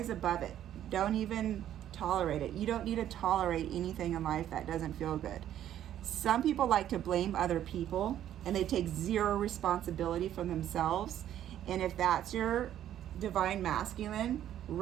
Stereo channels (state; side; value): quieter; left; 11.3 dB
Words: above it. Don't even tolerate it. You don't need to tolerate anything in life that doesn't feel good. Some people like to blame other people and they take zero responsibility from themselves. And if that's your divine masculine,